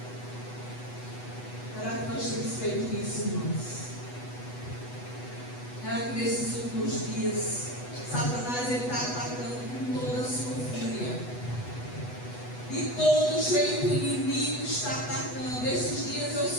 Será que nós temos feito isso, irmãos? Será que nesses últimos dias Satanás está atacando com toda a sua fúria? De todo jeito o inimigo está atacando. Esses dias eu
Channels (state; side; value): late; right; 8.1 ms